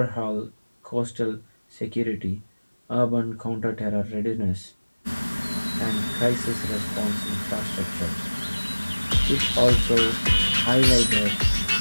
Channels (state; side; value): inverted; both; correlation -1.00